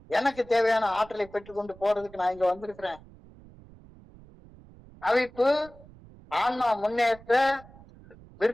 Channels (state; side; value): noise; right; rumble, 22 dB below the sound